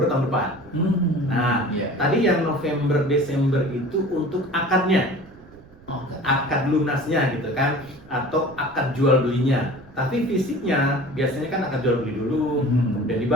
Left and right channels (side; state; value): right; noise; rumble, 24 dB below the sound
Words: tahun depan. Nah, tadi yang November Desember itu untuk akadnya, akad lunasnya gitu kan, atau akad jual belinya. Tapi fisiknya biasanya kan akad jual beli dulu, kemudian